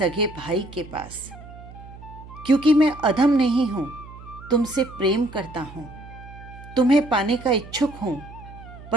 भाई के पास, क्योंकि मैं अधम नहीं हूं, तुमसे प्रेम करता हूं, तुम्हें पाने का इच्छुक हूं,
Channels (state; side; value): noise; right; hum, 17 dB below the sound